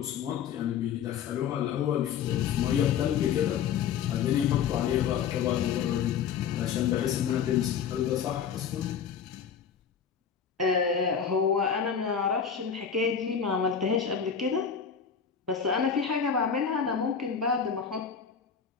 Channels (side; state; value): right; quieter; 7.3 dB